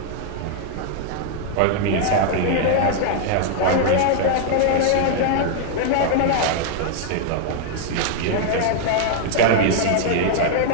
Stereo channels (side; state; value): both; different; correlation 0.00